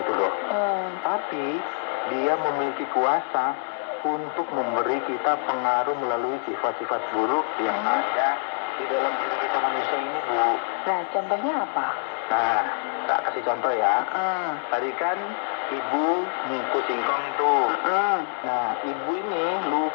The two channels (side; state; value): right; silent; 59 dB below the other